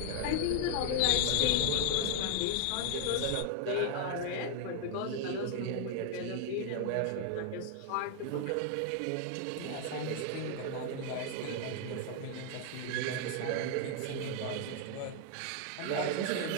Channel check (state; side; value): different; both; correlation 0.00